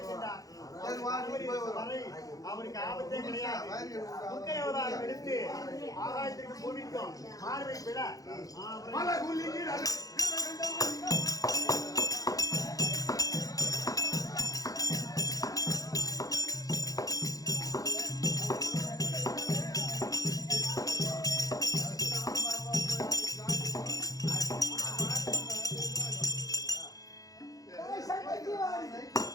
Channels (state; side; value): late; right; 0.17 ms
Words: வரை அவனுக்கு ஆபத்தே கிடையாது. துர்க்கை அவதாரம் எடுத்து ஆகாயத்திற்கு பூமிக்கும் மார்பை பிள